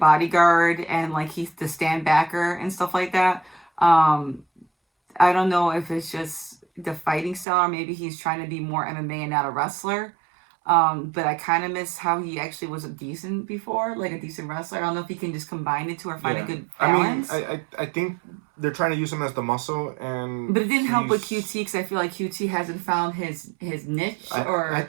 and, like, he's the stand backer and stuff like that. I don't know if it's just the fighting style, or maybe he's trying to be more MMA and not a wrestler. But I kind of miss how he actually was a decent wrestler. I don't know if he can just combine the two or find a good balance. I mean, I think they're trying to use him as the muscle, but it didn't help with QT, because I feel like QT hasn't found his niche. I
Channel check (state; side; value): drops out; left; at 7.5 s